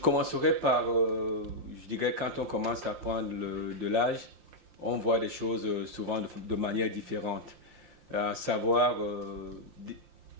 par, je dirais, quand on commence à prendre de l'âge, on voit les choses souvent de manière différente. À savoir,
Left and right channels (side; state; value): left; late; 5.7 ms